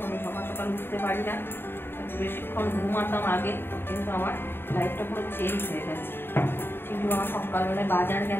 আমি সকাল সকাল উঠতে পারি না, বেশিক্ষণ ঘুমাতাম আগে, কিন্তু আমার লাইফটা পুরো চেঞ্জ হয়ে গেছে। চিন্টু আমার সকালবেলায় বাজার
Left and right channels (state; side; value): late; right; 0.11 ms